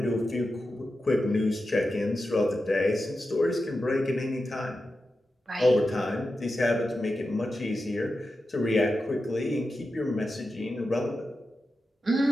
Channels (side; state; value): both; normal; correlation 0.91